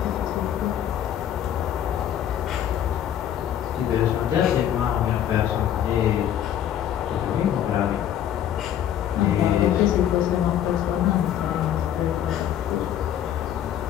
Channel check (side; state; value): right; quieter; 10.5 dB